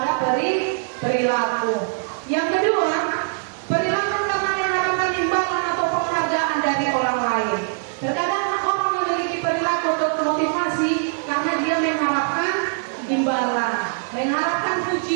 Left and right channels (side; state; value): left; silent; digital silence